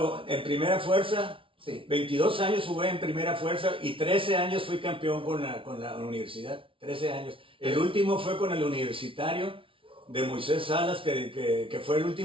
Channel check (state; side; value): late; left; 0.25 ms